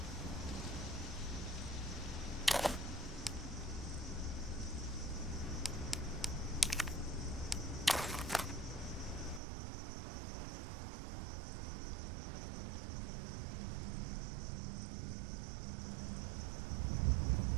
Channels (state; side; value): drops out; left; at 9.4 s